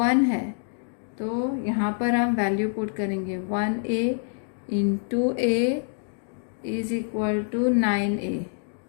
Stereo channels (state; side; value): silent; right; digital silence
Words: है तो यहाँ पर हम वैल्यू पुट करेंगे 1A × A is equal to 9A।